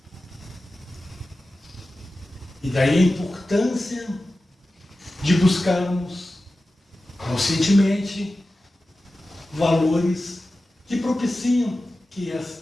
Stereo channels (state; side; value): normal; both; correlation 0.94